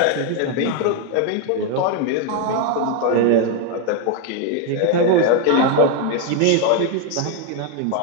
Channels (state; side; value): different; both; correlation 0.01